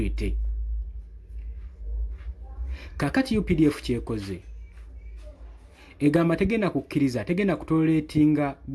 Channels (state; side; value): identical; both; correlation 1.00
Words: kakati UPDF kyekoze egamba tegenda kukkiriza tegenda kutoletinga